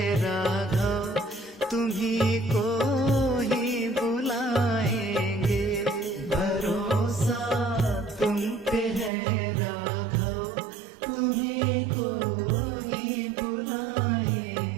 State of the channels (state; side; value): drops out; left; at 9.1 s